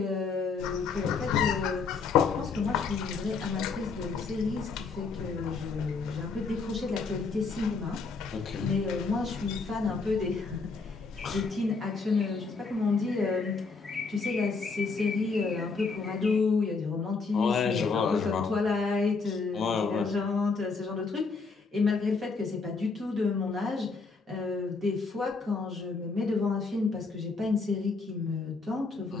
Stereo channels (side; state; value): right; quieter; 4.5 dB